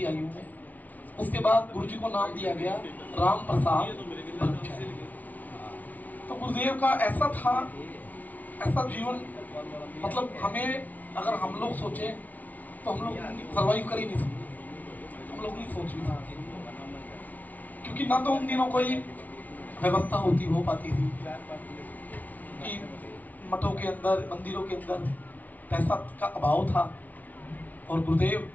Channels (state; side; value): late; right; 0.076 ms